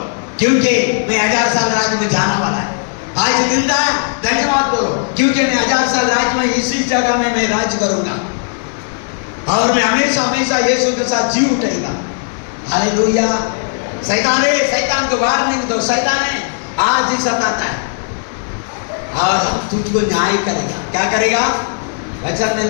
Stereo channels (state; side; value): silent; right; 63 dB below the other